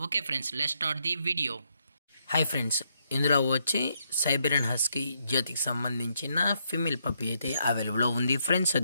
Okay friends, let's start the video. Hi friends, ఇందులో వచ్చి సైబీరియన్ హస్కీ జాతికి సంబంధించిన ఫీమేల్ పప్పీ అయితే అవైలబుల్లో ఉంది ఫ్రెండ్స్.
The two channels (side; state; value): both; inverted; correlation -0.76